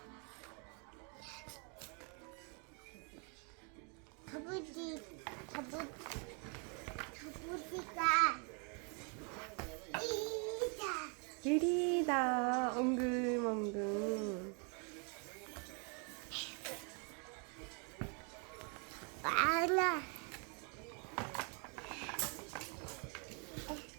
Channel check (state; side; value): quieter; left; 37.0 dB